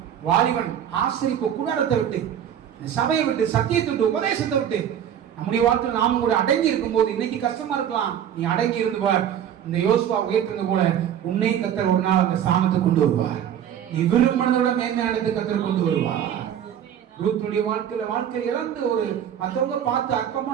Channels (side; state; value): left; quieter; 9.7 dB